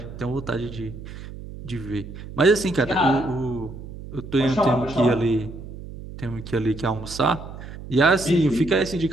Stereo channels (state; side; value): noise; right; hum, 12 dB below the sound